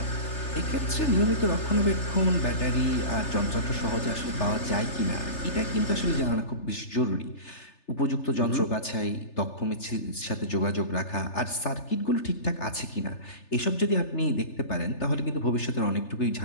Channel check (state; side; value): late; right; 3.3 ms